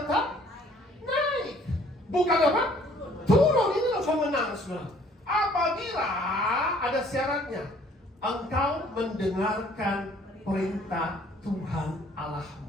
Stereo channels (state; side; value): normal; both; correlation 0.58